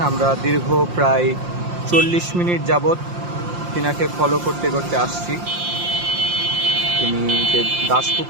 আমরা দীর্ঘ প্রায় 40 মিনিট যাবৎ তিনাকে ফলো করতে করতে আসছি। তিনি যে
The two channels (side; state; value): left; late; 5.7 ms